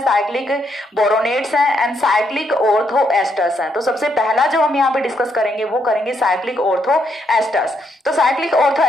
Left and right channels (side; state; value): both; normal; correlation 0.76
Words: साइक्लिक बोरोनेट्स हैं एंड साइक्लिक ऑर्थो एस्टर्स हैं। तो सबसे पहला जो हम यहाँ पे डिस्कस करेंगे वो करेंगे साइक्लिक ऑर्थो एस्टर्स। तो साइक्लिक ऑर्थो